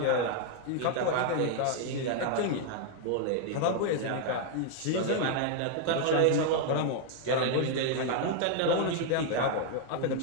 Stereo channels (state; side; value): different; both; correlation 0.00